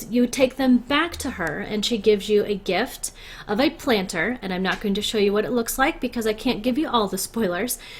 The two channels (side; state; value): both; identical; correlation 1.00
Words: you take them back to her and she gives you a gift of a planter, and I'm not going to show you what it looks like because I can't give you all the spoilers.